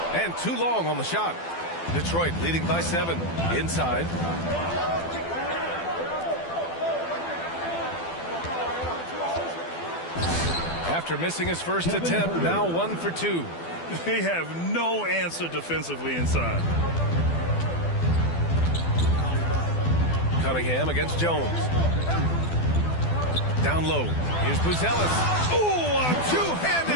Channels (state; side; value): late; right; 12 ms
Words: And too long on the shot. Detroit leading by 7. Inside. After missing his first attempt, now 1 for 2. They have no answer defensively inside. Cunningham against Jones. Down low. Here's Buzelis. Ooh, a